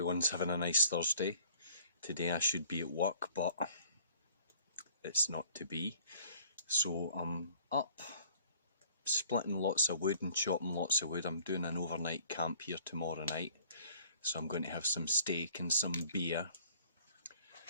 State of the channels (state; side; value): inverted; both; correlation -0.54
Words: having a nice Thursday. Today I should be at work, but it's not to be. So I'm up, splitting lots of wood and chopping lots of wood. I'm doing an overnight camp here tomorrow night. So I'm going to have some steak and some beer